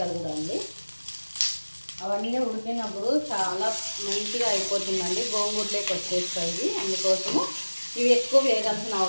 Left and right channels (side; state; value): both; inverted; correlation -1.00